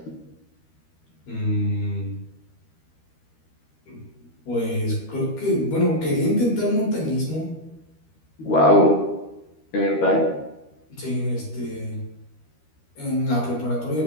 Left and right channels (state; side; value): late; right; 13 ms